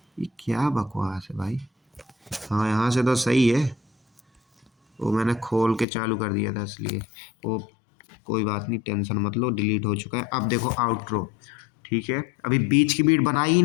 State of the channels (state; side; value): drops out; right; at 5.9 s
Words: ये क्या बकवास है भाई। हाँ, यहाँ से तो सही है, वो मैंने खोल के चालू कर दिया था इसलिए। वो कोई बात नहीं, टेंशन मत लो, डिलीट हो चुका है। अब देखो आउटरो, ठीक है? अभी बीच की बीट बनाई ही